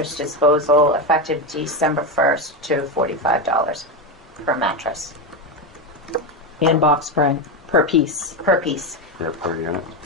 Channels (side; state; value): both; normal; correlation 0.13